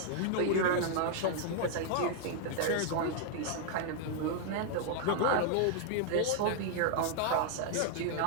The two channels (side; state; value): both; different; correlation 0.00